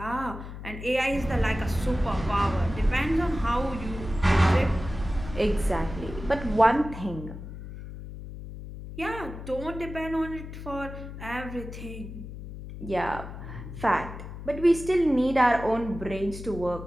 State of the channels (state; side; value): noise; left; hum, 11 dB below the sound